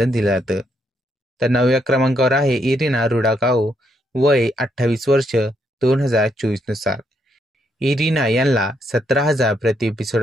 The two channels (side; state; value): both; normal; correlation 0.75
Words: दिलं जातं. तर नवव्या क्रमांकावर आहे इरिना रुडाकाओ. वय 28 वर्ष 2024 नुसार. इरिना यांना 17,000 प्रति एपिसोड